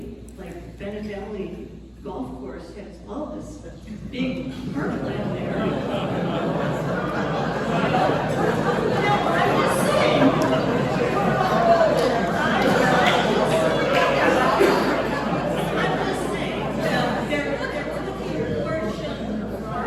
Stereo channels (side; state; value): both; identical; correlation 1.00